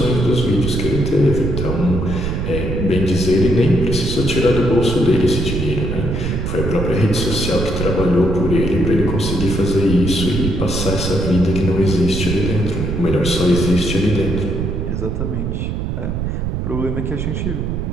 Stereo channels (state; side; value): noise; right; rumble, 2 dB below the sound